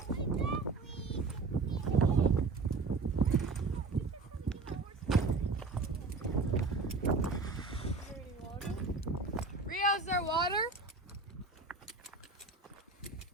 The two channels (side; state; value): left; quieter; 3.9 dB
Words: Rio, is there water?